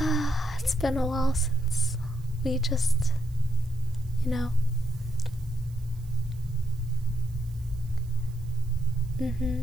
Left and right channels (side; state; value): right; noise; hiss, 28 dB below the sound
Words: It's been a while since we just,